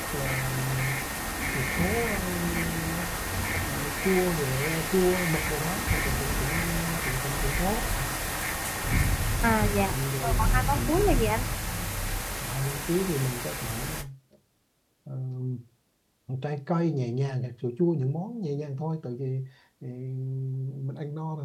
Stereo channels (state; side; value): identical; both; correlation 1.00